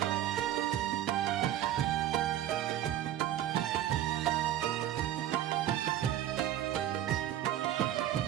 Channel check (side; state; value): left; quieter; 12.1 dB